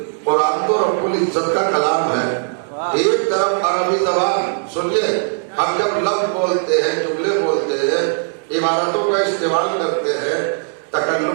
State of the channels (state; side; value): silent; left; digital silence